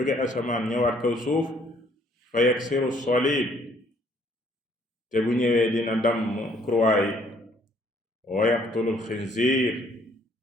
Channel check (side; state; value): both; normal; correlation 0.63